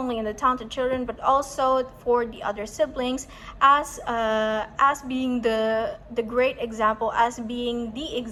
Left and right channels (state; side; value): identical; both; correlation 1.00